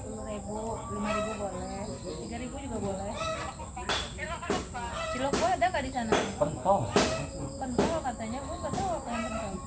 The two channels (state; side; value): identical; both; correlation 1.00